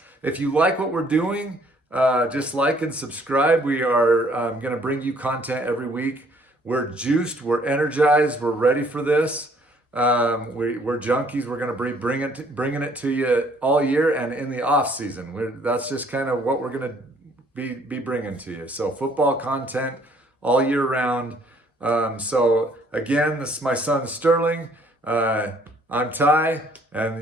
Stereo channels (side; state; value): both; normal; correlation 0.61